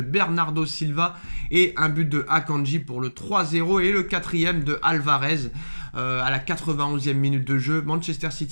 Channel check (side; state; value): both; inverted; correlation -1.00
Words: Bernardo Silva et un but de Akanji pour le 3-0 et le quatrième de Alvarez à la 91e minute de jeu. Manchester